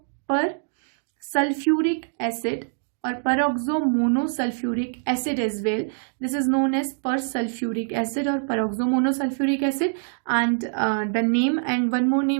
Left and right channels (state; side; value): silent; left; digital silence